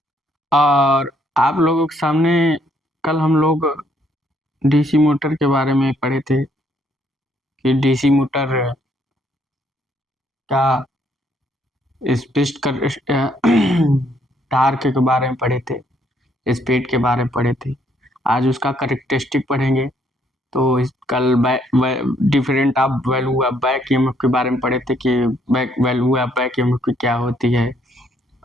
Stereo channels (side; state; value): both; normal; correlation 0.69